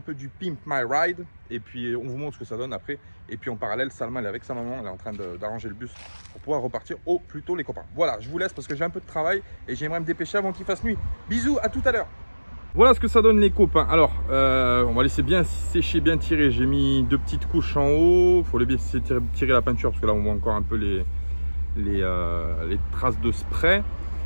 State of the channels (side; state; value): both; inverted; correlation -1.00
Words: du Pimp My Ride. Et puis on vous montre ce que ça donne après. Et puis en parallèle, Salma elle est avec sa maman, elle est en train d'arranger le bus pour pouvoir repartir au plus tôt les copains. Voilà, je vous laisse parce que j'ai un peu de travail et j'aimerais me dépêcher avant qu'il fasse nuit. Bisous, à tout à l'heure. Voilà ce que ça donne les copains. Alors, on va laisser bien sécher, bien tirer. J'ai mis 2 petites couches en haut. Il faut les laisser tirer la peinture parce que là on voit encore un peu les traces de spray.